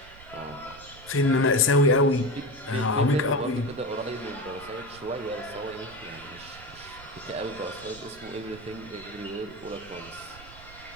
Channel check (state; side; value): noise; right; rumble, 19 dB below the sound